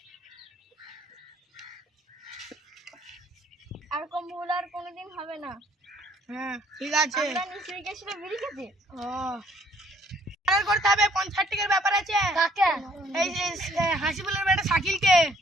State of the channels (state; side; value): normal; both; correlation 0.62